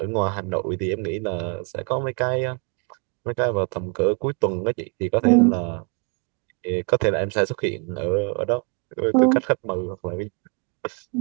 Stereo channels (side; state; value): left; quieter; 36.1 dB